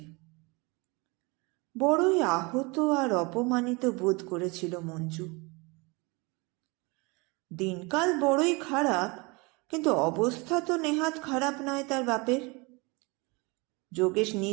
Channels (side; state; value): left; quieter; 27.3 dB